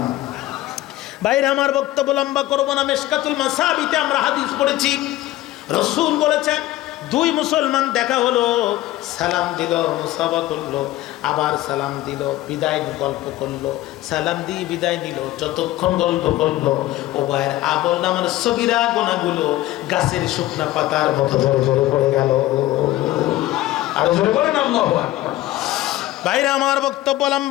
বাইরে আমার বক্তব্য লম্বা করবো না। মিশকাতুল মাসাবিতে আমরা হাদিস পড়েছি, রাসূল বলেছেন, দুই মুসলমান দেখা হলো, সালাম দিল, মুসাফা করলো, আবার সালাম দিল, বিদায় গল্প করলো, সালাম দিয়ে বিদায় নিল, যতক্ষণ গল্প করলো উভয়ের আমল নামার সগীরা গুনাহগুলো গাছের শুকনা পাতার মতো ঝরে ঝরে পড়ে গেল। আর ঝরে পড়ে না। আল্লাহু আকবার। বাইরে আমার বক্তব্য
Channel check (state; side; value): quieter; right; 15.9 dB